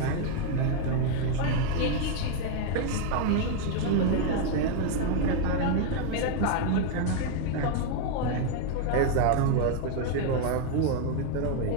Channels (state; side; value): different; both; correlation 0.01